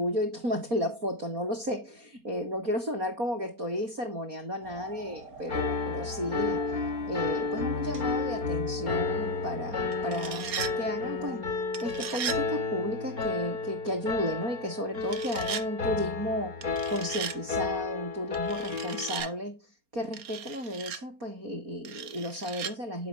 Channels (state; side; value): late; left; 4.3 ms